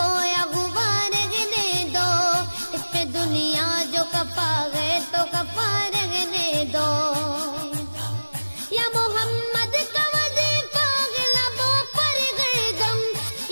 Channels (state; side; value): inverted; both; correlation -1.00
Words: ہوا رہنے دو، اس پہ دنیا جو کپا ہے تو کپا رہنے دو، یا محمد کا وظیفہ ہے لبوں پر گردم،